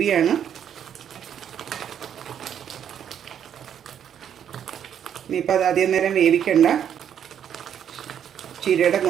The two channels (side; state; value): left; quieter; 9.0 dB